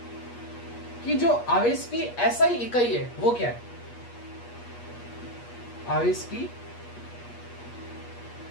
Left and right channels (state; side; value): late; right; 8.4 ms